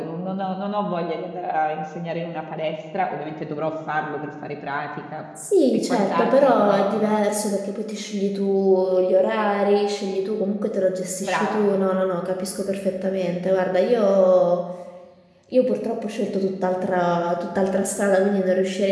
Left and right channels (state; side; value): identical; both; correlation 1.00